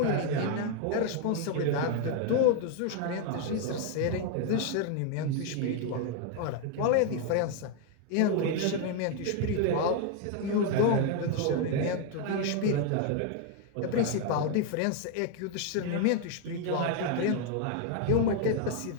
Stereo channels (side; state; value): both; different; correlation 0.00